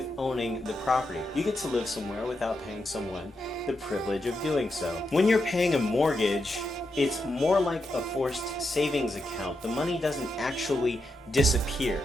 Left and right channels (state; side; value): normal; both; correlation 0.85